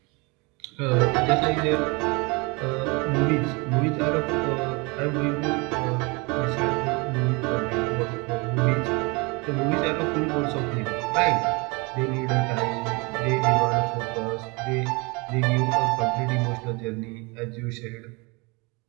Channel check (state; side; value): quieter; left; 28.1 dB